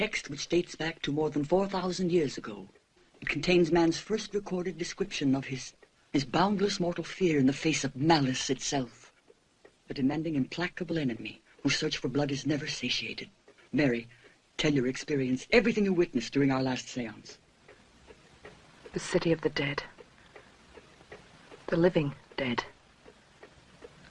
which dates back to more than 4,000 years ago. It contains man's first recorded description of his boundless mortal fear in the face of malice itself. A demanding, implacable enemy whose search for blood is never satiated. Mary, tell your experience, everything you witnessed during our last seance. The city of the dead. The living dead.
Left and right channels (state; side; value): identical; both; correlation 1.00